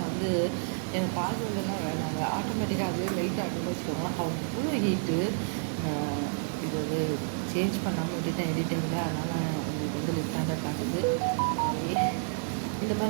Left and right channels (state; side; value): silent; left; digital silence